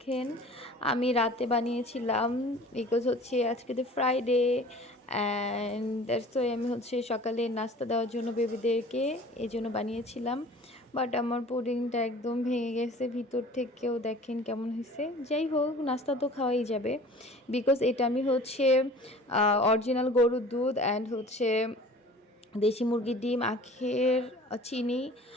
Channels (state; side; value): normal; both; correlation 0.45